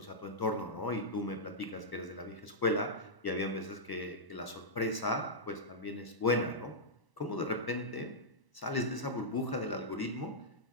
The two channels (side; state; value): right; late; 1.0 ms